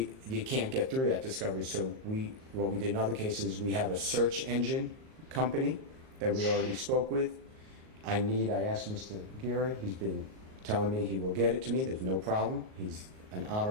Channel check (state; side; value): late; left; 38 ms